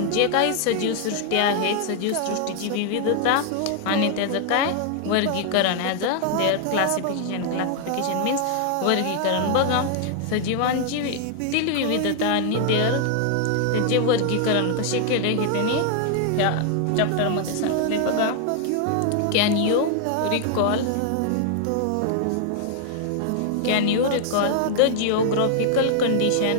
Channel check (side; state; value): both; different; correlation 0.00